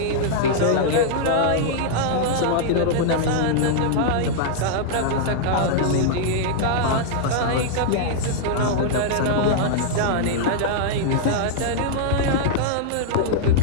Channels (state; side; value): different; both; correlation -0.01